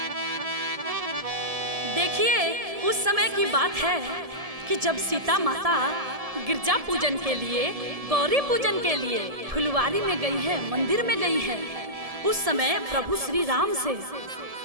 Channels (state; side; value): late; left; 1.7 ms